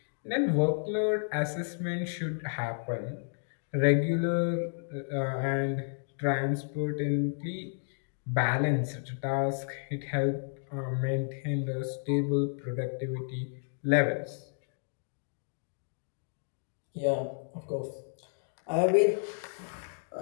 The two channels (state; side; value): silent; right; digital silence